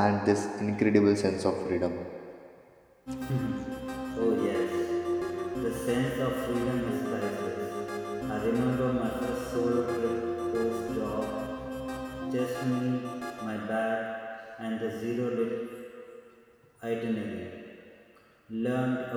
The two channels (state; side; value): identical; both; correlation 1.00